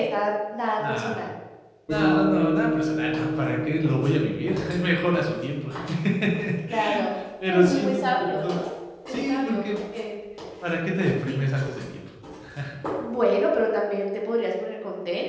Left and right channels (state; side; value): identical; both; correlation 1.00